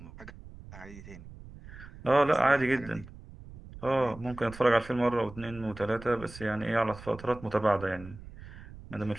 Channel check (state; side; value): noise; right; rumble, 16 dB below the sound